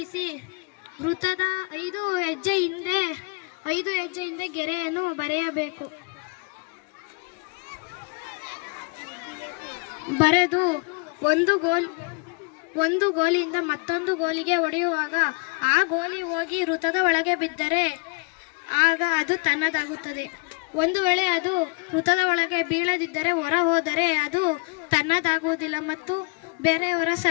ವೃತ್ತದ 5 ಹೆಜ್ಜೆ ಹಿಂದೆ ಗೆರೆಯನ್ನು ಬರೆಯಬೇಕು. ಬರೆದು ಒಂದು ಗೋಲಿಯಿಂದ ಮತ್ತೊಂದು ಗೋಲಿಗೆ ಹೊಡೆಯುವಾಗ ಆ ಗೋಲಿ ಹೋಗಿ ವೃತ್ತದ ಒಳಗೆ ಬಿದ್ದರೆ ಆಗ ಅದು ತನ್ನದಾಗುತ್ತದೆ. ಒಂದು ವೇಳೆ ಅದು ವೃತ್ತದ ಒಳಗೆ ಬೀಳದಿದ್ದರೆ, ಹೊರ ಹೋದರೆ ಅದು ತನ್ನದಾಗುವುದಿಲ್ಲ ಮತ್ತು ಬೇರೆಯವರ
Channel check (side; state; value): right; quieter; 32.2 dB